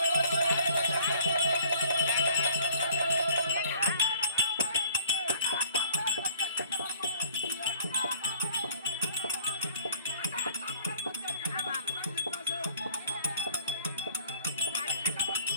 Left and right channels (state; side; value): inverted; both; correlation -0.53